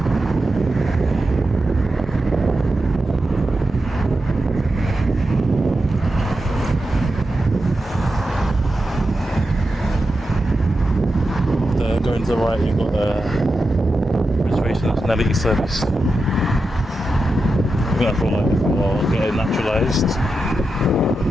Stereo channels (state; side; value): normal; both; correlation 0.89